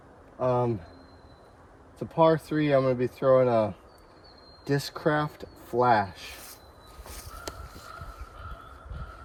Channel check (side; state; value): both; identical; correlation 1.00